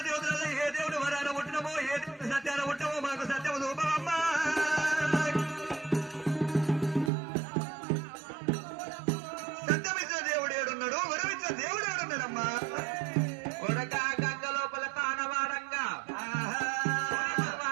దేవతలలో ఏ దేవుడు వరాన పుట్టినమో ఏ దేవుడు సత్యాన పుట్టమో మాకు సత్యము రూపమమ్మా. సత్యమిచ్చిన దేవుడు ఏడున్నాడు, వరమిచ్చిన దేవుడు ఏడున్నాడమ్మా?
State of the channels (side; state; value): left; drops out; at 7.1 s